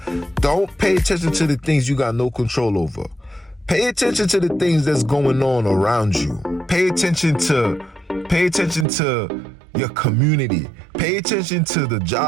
don't pay attention to the things you got no control over. Pay attention to the things that's going on around you. Pay attention to your community. Pay attention to the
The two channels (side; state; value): left; drops out; at 8.8 s